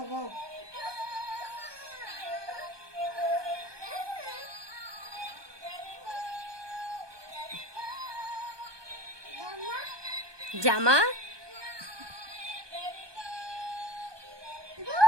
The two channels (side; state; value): left; late; 1.2 ms